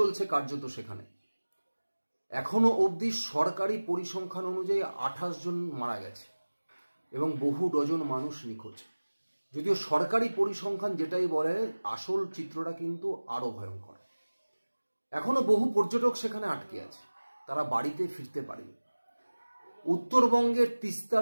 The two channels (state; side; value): inverted; both; correlation -1.00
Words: কার্যত সেখানে। এখনো অবধি সরকারি পরিসংখ্যান অনুযায়ী 28 জন মারা গেছে এবং বহু ডজন মানুষ নিখোঁজ। যদিও সরকারি পরিসংখ্যান যেটাই বলে, আসল চিত্রটা কিন্তু আরো ভয়ঙ্কর। এখনো বহু পর্যটক সেখানে আটকে আছে, তারা বাড়িতে ফিরতে পারেনি। উত্তরবঙ্গের